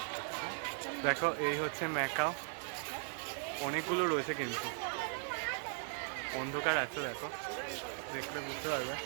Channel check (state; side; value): silent; left; 52 dB below the other